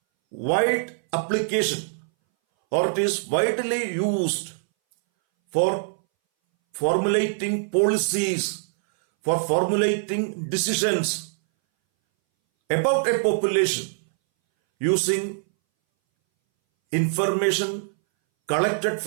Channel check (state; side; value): silent; left; 61 dB below the other